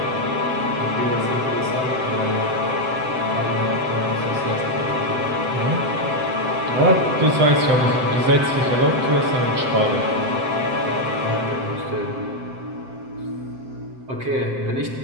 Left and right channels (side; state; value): left; late; 7.8 ms